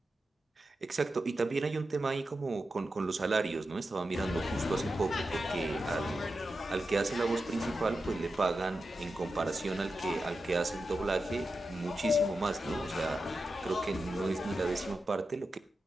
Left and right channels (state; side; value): normal; both; correlation 0.90